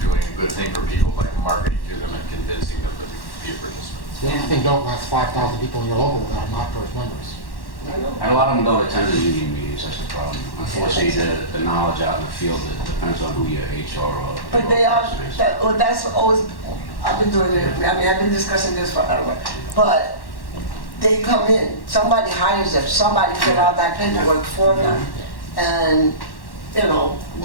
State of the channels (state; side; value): late; right; 1.1 ms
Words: a good thing for people by marketing to them and convincing them to be a participant. The only thing, don't last 5,000 people in your local that are not BERS members. I know. And a lot of them don't attend the union meetings, that's the problem. Unfortunately, the knowledge out in the field, it depends on who your HR or. But they are, person is. that's always, I've been doing it, I've been discussing this forever. But they come in, somebody hires them, somebody fill out that paperwork for them. And, Well,